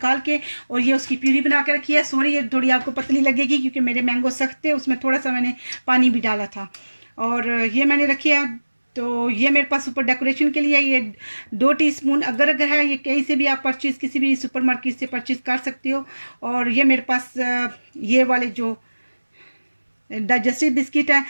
के और ये उसकी प्यूरी बना के रखी है। सॉरी, ये थोड़ी आपको पतली लगेगी क्योंकि मेरे मैंगो सख्त थे, उसमें थोड़ा सा मैंने पानी भी डाला था। और ये मैंने रखी है। तो ये मेरे पास ऊपर डेकोरेशन के लिए ये 2 टीस्पून अगर अगर है, ये कहीं से भी आप परचेज़ किसी भी सुपरमार्केट से परचेज़ कर सकते हो। और ये मेरे पास ये वाले जो डाइजेस्टिव बिस्किट है,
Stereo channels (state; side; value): inverted; both; correlation -1.00